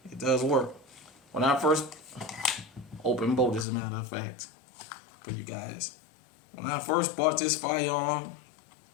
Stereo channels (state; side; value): drops out; right; at 3.7 s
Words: it does work. When I first open bolt, as a matter of fact, for you guys, when I first bought this firearm,